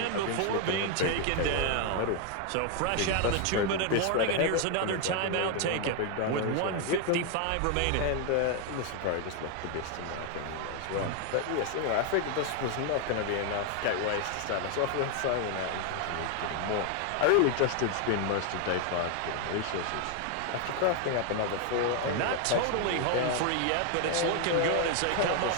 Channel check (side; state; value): both; different; correlation 0.01